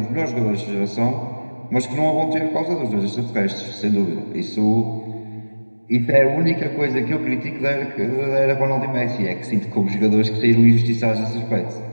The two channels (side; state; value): both; inverted; correlation -1.00